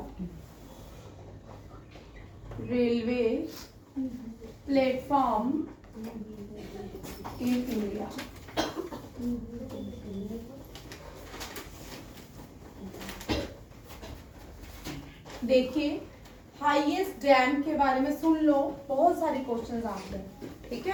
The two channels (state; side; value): identical; both; correlation 1.00